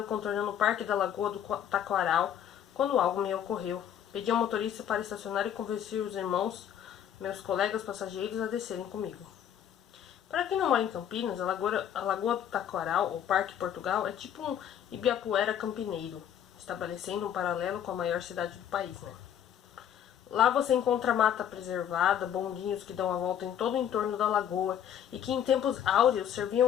contornando o parque da Lagoa do Taquaral quando algo me ocorreu. Pedi ao motorista para estacionar e convenci os irmãos, meus colegas passageiros, a descerem comigo. Para quem não mora em Campinas, a Lagoa do Taquaral, ou Parque Portugal, é tipo um Ibirapuera campineiro, estabelecendo um paralelo com a maior cidade do país, né? Lá você encontra mata preservada, bondinhos que dão a volta em todo o entorno da lagoa e que em tempos áureos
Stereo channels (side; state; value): right; quieter; 9.7 dB